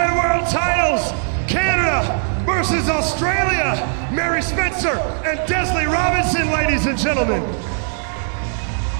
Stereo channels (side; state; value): left; silent; 58 dB below the other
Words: World Titles, Canada versus Australia, Mary Spencer and Desley Robinson, ladies and gentlemen.